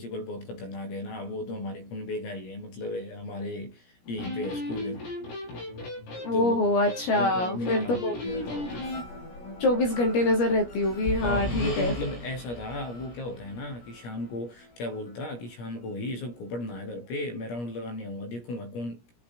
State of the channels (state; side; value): late; right; 17 ms